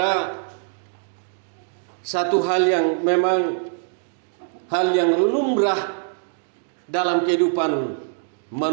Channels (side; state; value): left; silent; digital silence